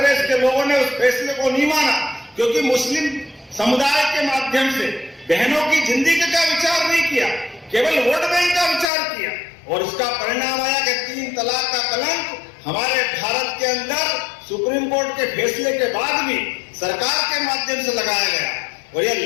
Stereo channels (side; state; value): right; drops out; at 8.9 s